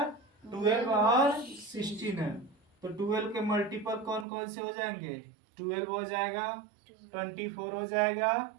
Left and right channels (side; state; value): left; drops out; at 4.2 s